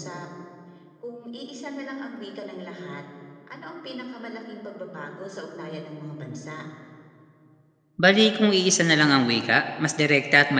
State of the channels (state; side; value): identical; both; correlation 1.00